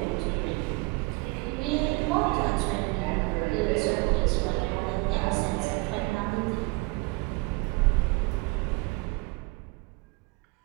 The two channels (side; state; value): left; quieter; 26.4 dB